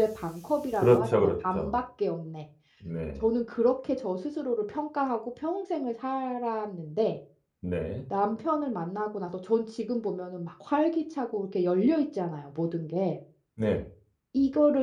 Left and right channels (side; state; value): both; identical; correlation 1.00